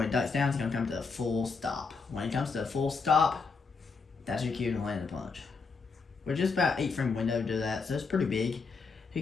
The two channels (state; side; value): quieter; right; 4.7 dB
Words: he ducks down, it's going to come to a full stop. When he comes to a full stop, that's your cue to land the punch. We're just about 8 frame window to do that, so it's pretty big. You